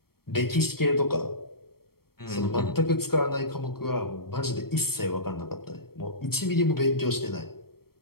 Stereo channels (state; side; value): late; right; 0.94 ms